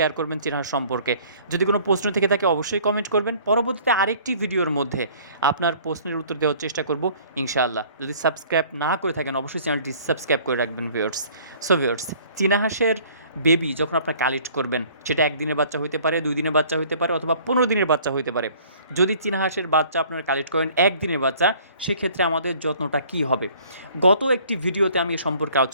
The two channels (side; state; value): both; inverted; correlation -0.54